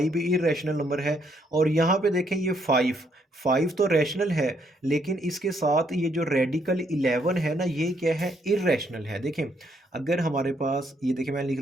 भी इरेशनल नंबर है। और यहाँ पे देखें ये 5, 5 तो रैशनल है, लेकिन इसके साथ ये जो रेडिकल 11 है ना ये क्या है, इरेशनल है। देखें अगर हमारे पास ये देखें मैंने लिख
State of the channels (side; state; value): both; normal; correlation 0.72